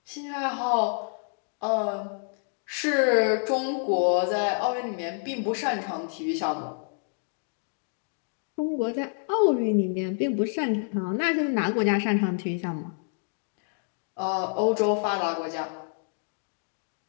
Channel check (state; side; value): silent; right; 59 dB below the other